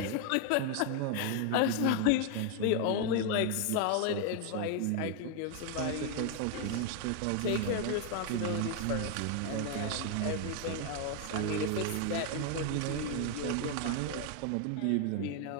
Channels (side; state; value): both; different; correlation 0.01